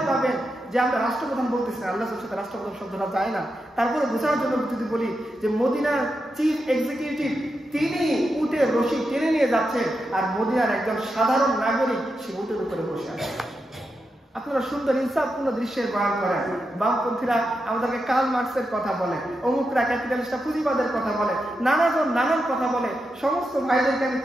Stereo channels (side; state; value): both; normal; correlation 0.87